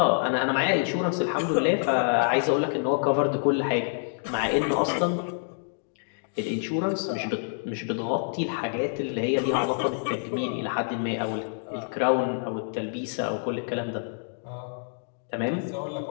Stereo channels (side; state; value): right; silent; digital silence